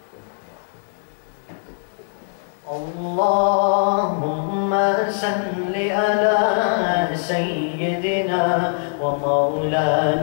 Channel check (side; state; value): right; silent; digital silence